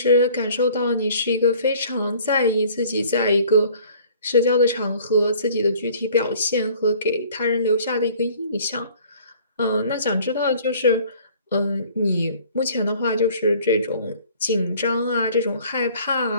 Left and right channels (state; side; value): inverted; both; correlation -0.53